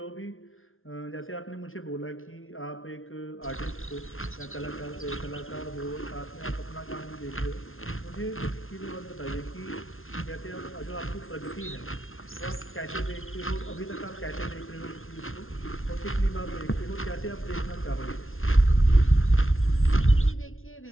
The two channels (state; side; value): late; right; 0.60 ms